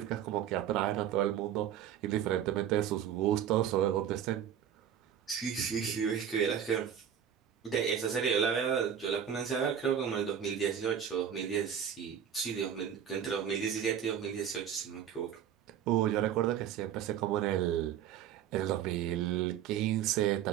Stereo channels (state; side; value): quieter; left; 9.2 dB